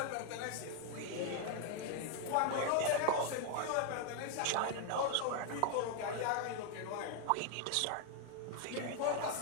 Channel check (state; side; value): different; both; correlation 0.00